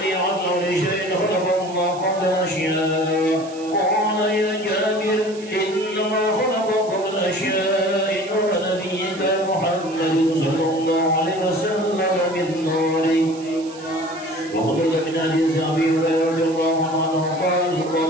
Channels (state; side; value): noise; right; hiss, 20 dB below the sound